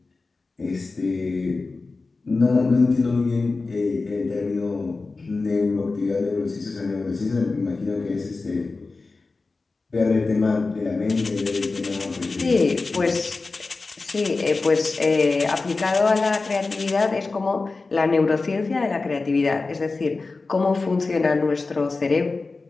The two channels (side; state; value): right; quieter; 3.8 dB